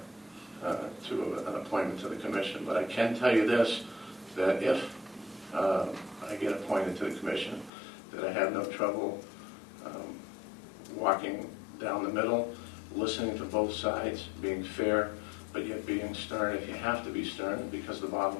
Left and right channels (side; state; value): right; drops out; at 7.7 s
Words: to an appointment to the commission. But I can tell you this, that if I get appointed to the commission, that I have no trouble walking down the middle, listening to both sides, being fair, but yet being stern if you have to be stern, because the